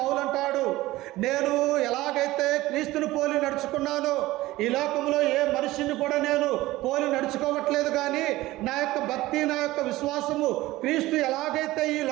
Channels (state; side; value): quieter; left; 17.8 dB